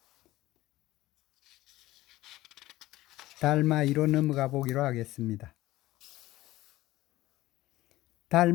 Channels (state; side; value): quieter; right; 17.0 dB